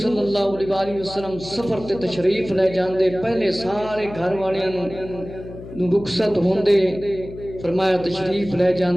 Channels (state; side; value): noise; left; hum, 14 dB below the sound